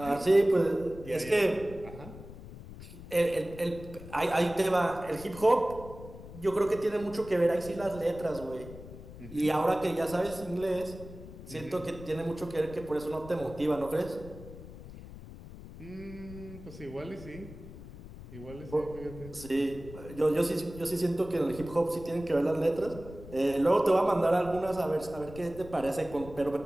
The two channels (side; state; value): left; noise; rumble, 15 dB below the sound